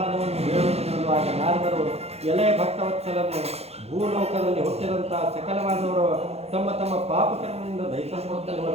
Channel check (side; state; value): left; late; 0.30 ms